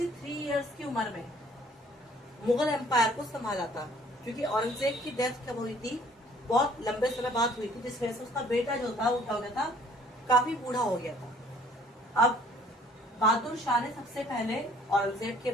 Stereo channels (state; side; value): normal; both; correlation 0.57